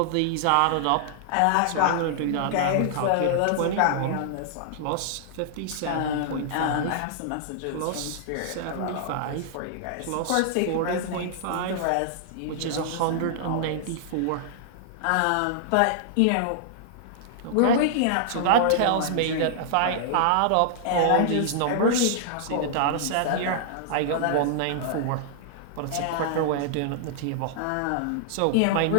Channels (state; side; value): different; both; correlation -0.01